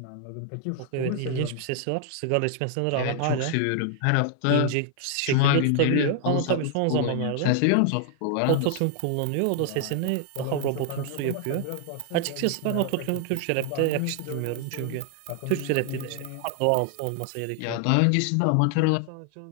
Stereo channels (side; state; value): both; different; correlation 0.00